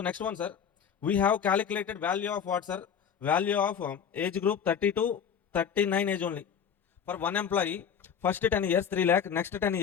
next one, sir, we have calculated value of what, sir? Value of age group 30 to 39 age only. For one employee, first 10 years 3 lakh, next 10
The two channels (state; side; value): quieter; right; 7.6 dB